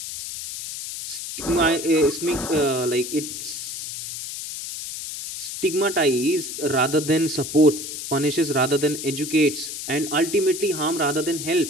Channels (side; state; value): left; noise; hiss, 7 dB below the sound